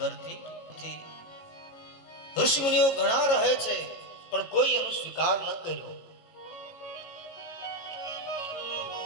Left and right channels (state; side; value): late; right; 18 ms